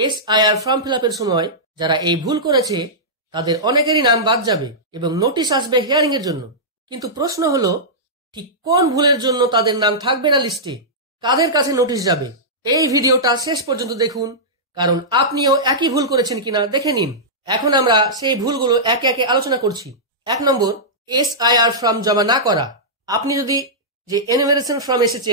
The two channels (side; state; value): both; normal; correlation -0.13